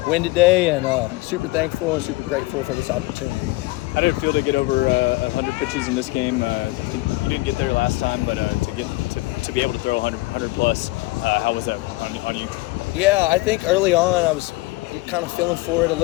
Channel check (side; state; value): right; quieter; 21.2 dB